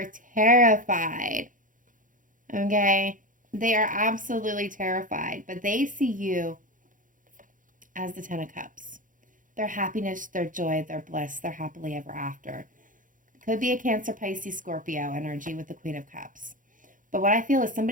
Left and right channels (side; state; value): left; late; 0.38 ms